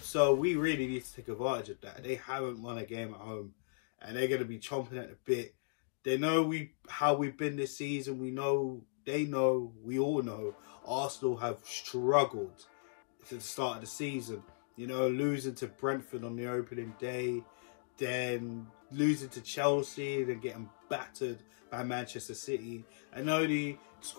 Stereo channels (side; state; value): right; silent; digital silence